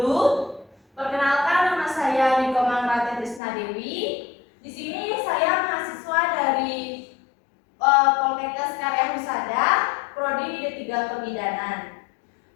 Perkenalkan, nama saya Niko Mangrate Trisna Dewi. Di sini saya mahasiswa dari Poltekkes Karya Husada, Prodi D3 Kebidanan.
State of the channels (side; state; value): right; drops out; at 3.4 s